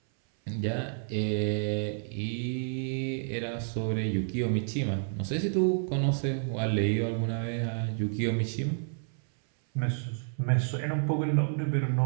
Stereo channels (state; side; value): silent; left; 58 dB below the other